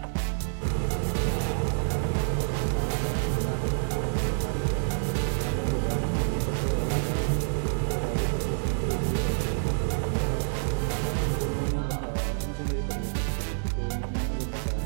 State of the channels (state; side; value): silent; left; digital silence